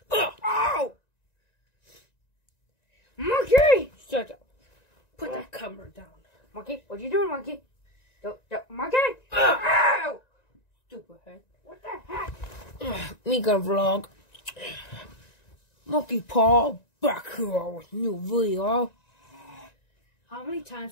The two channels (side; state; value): right; late; 1.9 ms